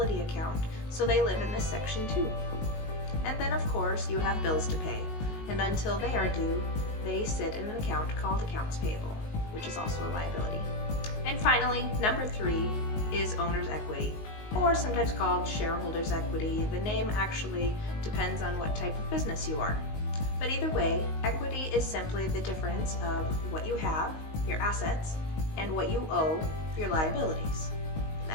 account, so they live in this section too. And then of course you have bills to pay, and until they are due, they sit in an account called accounts payable, which is also a liability. And finally, number 3 is owner's equity, or sometimes called shareholder's equity. The name actually depends on what type of business you are. But either way, equity is simply the difference of what you have, your assets, and what you owe, your liabilities.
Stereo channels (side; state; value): right; late; 19 ms